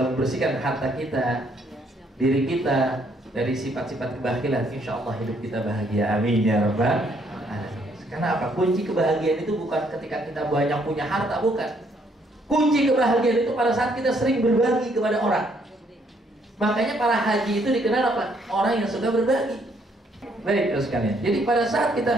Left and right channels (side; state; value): both; normal; correlation 0.69